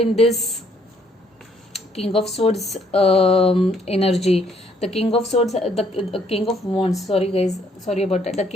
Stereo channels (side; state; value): both; normal; correlation 0.67